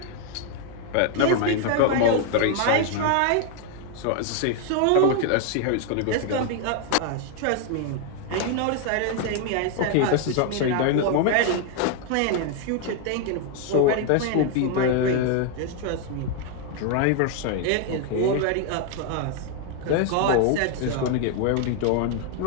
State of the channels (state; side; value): different; both; correlation 0.00